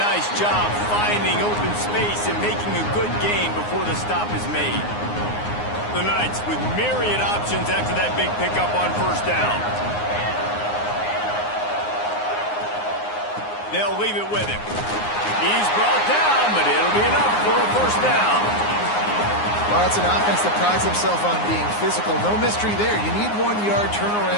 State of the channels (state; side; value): late; right; 9.6 ms